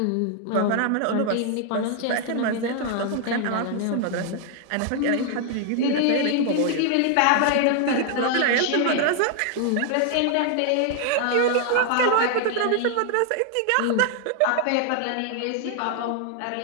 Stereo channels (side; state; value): both; different; correlation 0.00